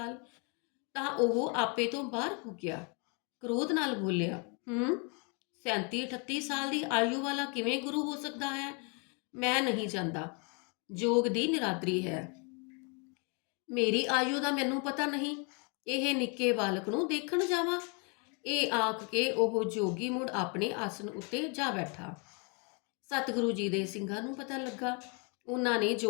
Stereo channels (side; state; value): right; quieter; 34.9 dB